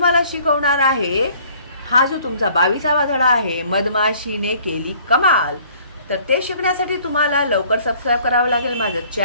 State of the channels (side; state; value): both; inverted; correlation -0.56